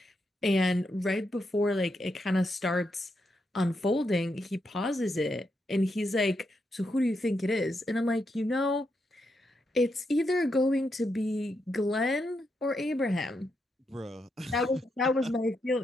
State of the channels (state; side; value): normal; both; correlation 0.82